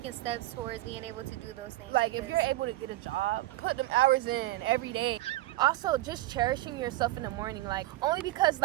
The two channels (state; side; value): quieter; left; 16.9 dB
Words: steps towards being able to do those things. Like, if you're able to get a job, put them hours in every day. Also, just cherishing yourself in the morning, like, only because